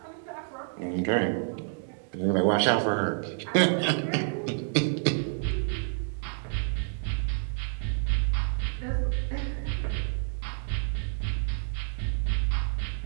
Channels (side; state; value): left; silent; 59 dB below the other